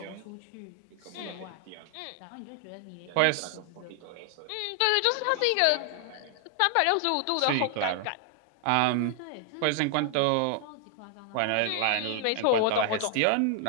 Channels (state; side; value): different; both; correlation 0.00